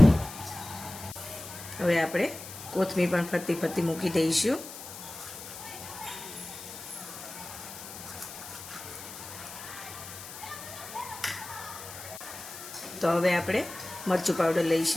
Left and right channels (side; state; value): left; noise; hiss, 12 dB below the sound